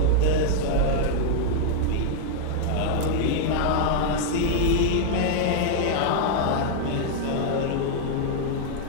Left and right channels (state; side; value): different; both; correlation -0.01